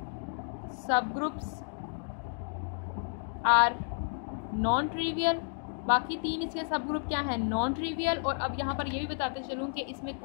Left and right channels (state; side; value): silent; right; 57 dB below the other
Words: are non trivial. बाकी 3 इसके सब ग्रुप क्या है? Non trivial. और अब यहाँ पर ये भी बताते चलूँ कि इसमें